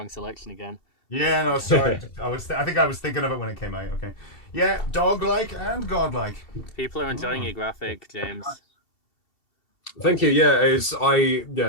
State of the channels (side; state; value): right; late; 2.7 ms